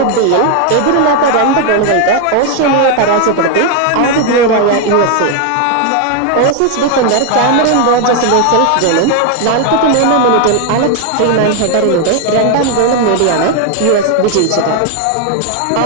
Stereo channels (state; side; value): different; both; correlation 0.00